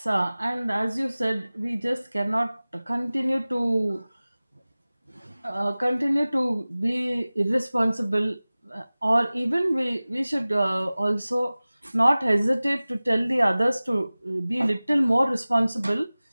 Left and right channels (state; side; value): inverted; both; correlation -0.98